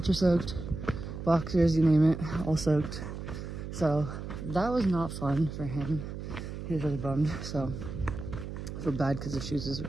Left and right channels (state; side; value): noise; right; hum, 8 dB below the sound